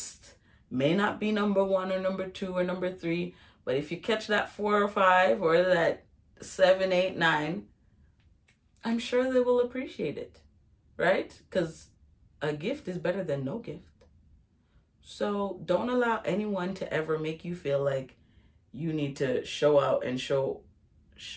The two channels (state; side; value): identical; both; correlation 1.00